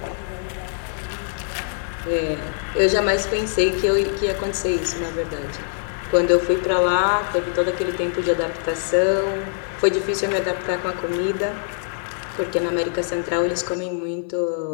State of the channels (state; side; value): silent; right; digital silence